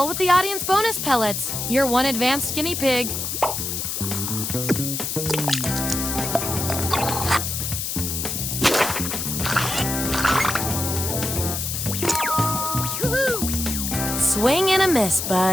with the audience bonus pellets. You're one advanced guinea pig. Swing and a miss,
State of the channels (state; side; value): noise; left; hiss, 3 dB below the sound